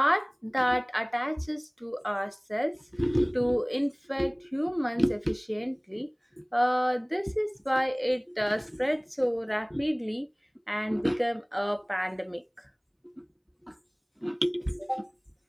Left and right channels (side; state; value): both; identical; correlation 1.00